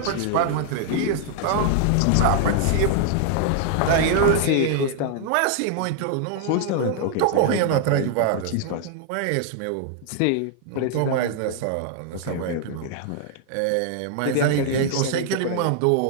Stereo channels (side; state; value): both; different; correlation 0.00